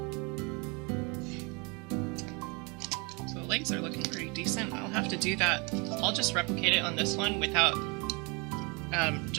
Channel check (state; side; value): quieter; left; 30.2 dB